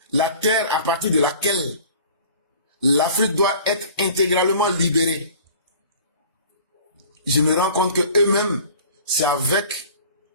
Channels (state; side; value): inverted; both; correlation -0.45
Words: la terre à partir de laquelle l'Afrique doit être intégralement libérée. Je me rends compte que eux-mêmes, c'est avec